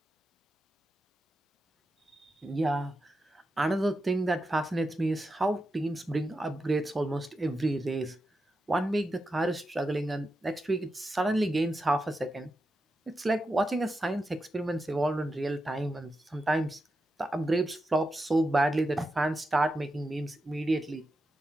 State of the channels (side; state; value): both; normal; correlation 0.89